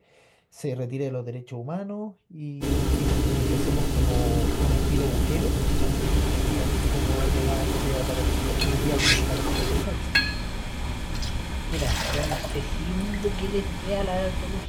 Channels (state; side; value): identical; both; correlation 1.00